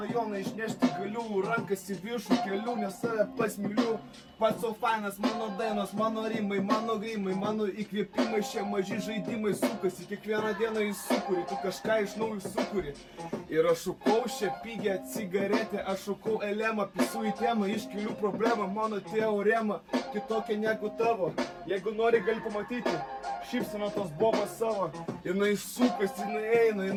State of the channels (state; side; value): identical; both; correlation 1.00